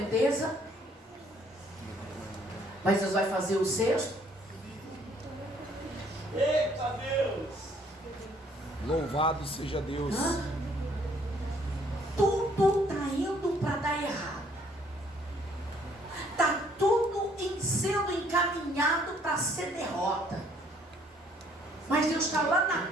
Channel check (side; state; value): both; normal; correlation 0.63